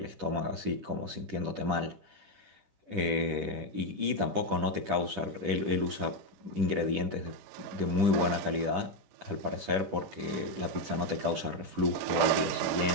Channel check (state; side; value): late; left; 10 ms